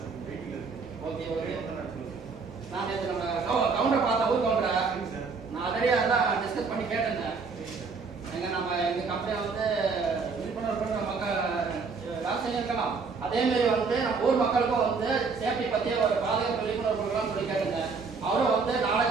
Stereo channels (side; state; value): left; quieter; 4.8 dB